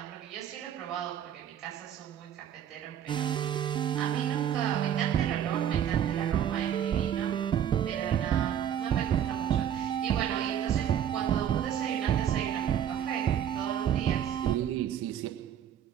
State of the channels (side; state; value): left; quieter; 9.6 dB